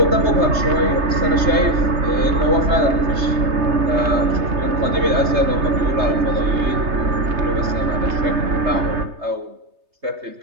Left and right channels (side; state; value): left; late; 3.3 ms